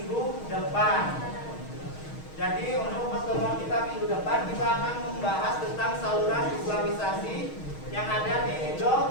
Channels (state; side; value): late; right; 6.4 ms